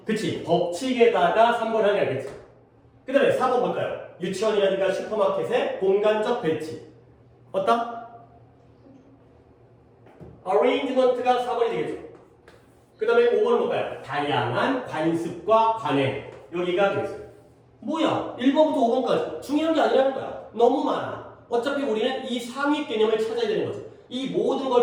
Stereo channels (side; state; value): both; identical; correlation 1.00